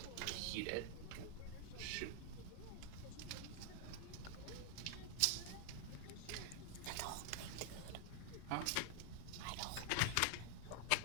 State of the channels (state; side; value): different; both; correlation 0.00